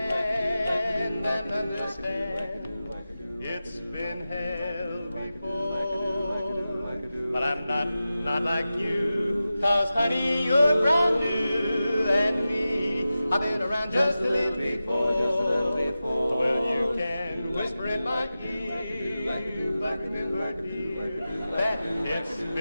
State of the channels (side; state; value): both; inverted; correlation -0.94